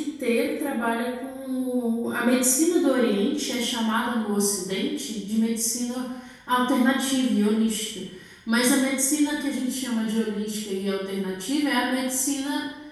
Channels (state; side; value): identical; both; correlation 1.00